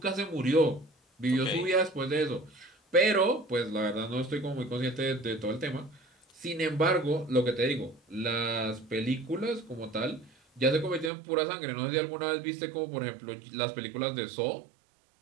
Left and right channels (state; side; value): drops out; left; at 11.1 s